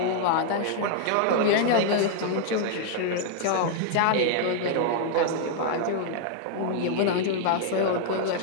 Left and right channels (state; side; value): different; both; correlation 0.00